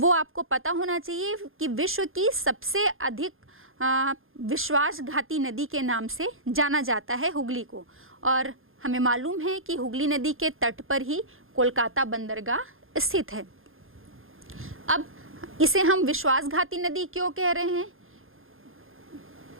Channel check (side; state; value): left; late; 0.60 ms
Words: आपको पता होना चाहिए कि विश्व की सबसे अधिक विश्वासघाती नदी के नाम से जाना जाता है हुगली को। और हमें मालूम है कि हुगली नदी के तट पर ही कोलकाता बंदरगाह स्थित है। अब इसे हम विश्वासघाती नदी क्यों कह रहे हैं?